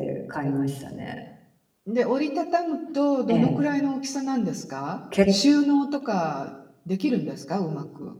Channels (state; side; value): identical; both; correlation 1.00